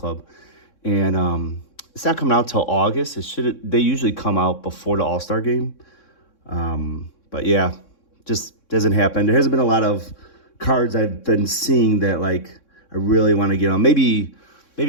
And it's not coming out till August. They usually come out before the All-Star game. But yeah, just doesn't happen. There hasn't been a lot of cards I've been seeing that I really want to get on. Maybe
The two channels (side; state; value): right; late; 3.6 ms